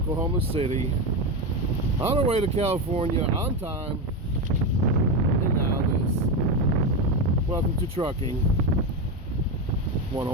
City. On our way to California on time. And now this. Welcome to Trucking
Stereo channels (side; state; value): both; normal; correlation 0.14